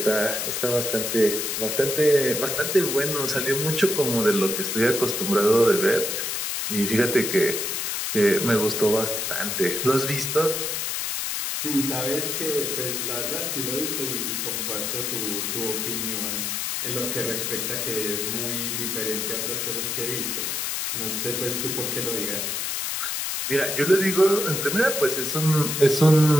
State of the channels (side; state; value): left; noise; hiss, 2 dB below the sound